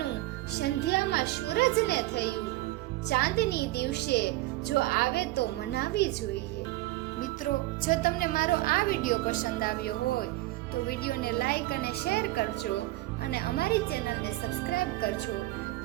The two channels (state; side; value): quieter; left; 18.5 dB